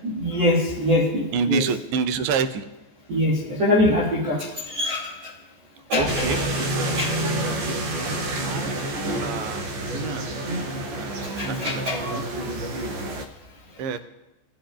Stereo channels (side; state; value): left; late; 14 ms